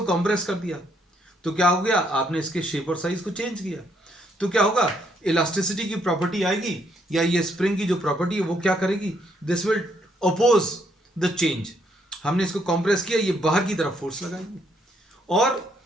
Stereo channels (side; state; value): both; normal; correlation 0.71